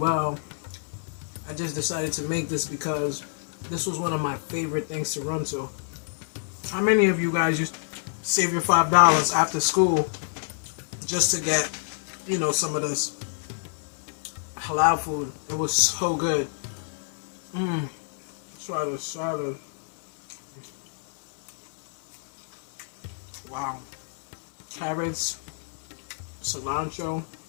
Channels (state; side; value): silent; right; 60 dB below the other